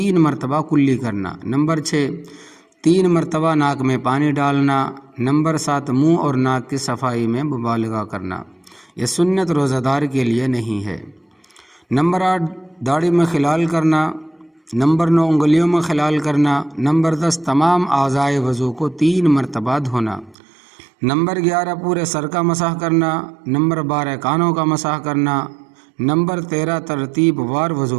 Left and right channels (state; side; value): drops out; left; at 20.4 s